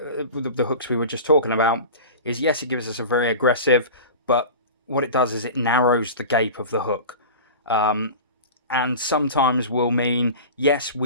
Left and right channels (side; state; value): both; inverted; correlation -0.32